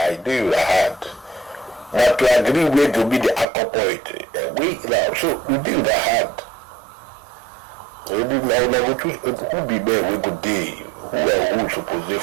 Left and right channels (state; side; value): drops out; left; at 3.5 s